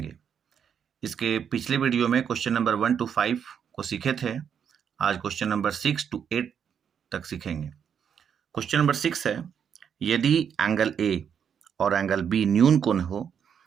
इसके पिछले वीडियो में क्वेश्चन नंबर 1 to 5 को सीखे थे। आज क्वेश्चन नंबर 6 to 8 तक सीखेंगे। क्वेश्चन नंबर 6 है, यदि एंगल ए और एंगल बी न्यून कोण हो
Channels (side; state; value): left; quieter; 7.8 dB